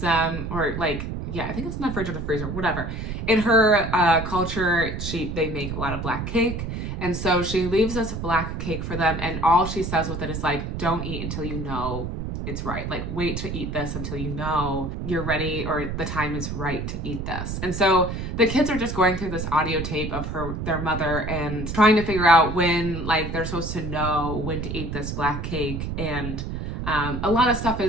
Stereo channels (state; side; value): noise; right; rumble, 5 dB below the sound